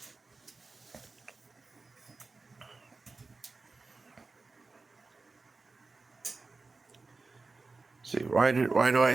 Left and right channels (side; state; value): left; quieter; 3.9 dB